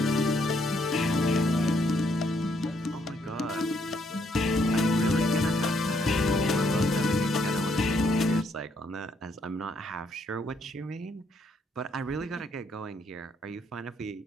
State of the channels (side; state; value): both; normal; correlation 0.72